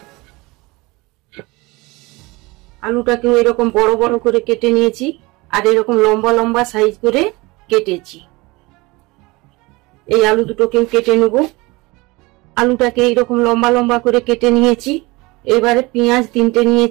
আলুটাকেও এরকম বড় বড় করে কেটে নিয়েছি আর এরকম লম্বা লম্বা সাইজ করে কেটেছি। এই আলু দুটোকেও কেটে নেব। আলুটাকে এইরকম লম্বা লম্বা করে কেটে নিয়েছি। এবারে পেঁয়াজ 3টে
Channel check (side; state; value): left; quieter; 23.3 dB